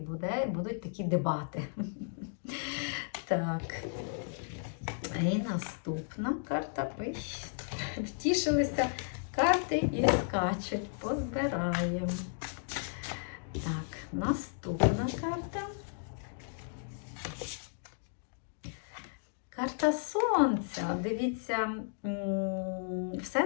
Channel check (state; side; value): silent; right; digital silence